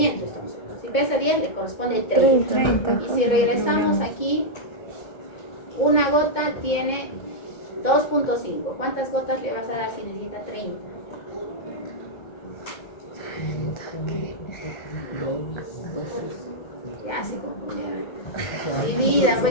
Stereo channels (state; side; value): late; right; 2.1 ms